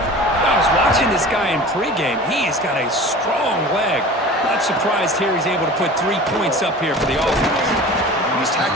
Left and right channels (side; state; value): both; normal; correlation 0.39